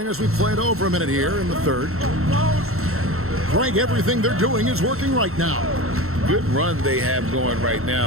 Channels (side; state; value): left; late; 0.63 ms